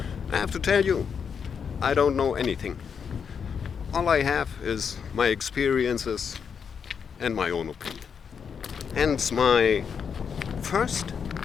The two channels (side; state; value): right; quieter; 6.7 dB